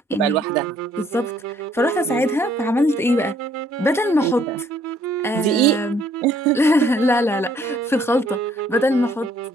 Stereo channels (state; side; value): normal; both; correlation 0.64